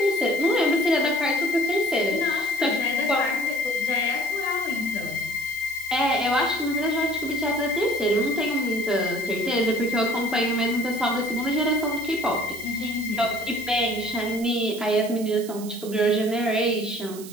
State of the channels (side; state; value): right; noise; hiss, 15 dB below the sound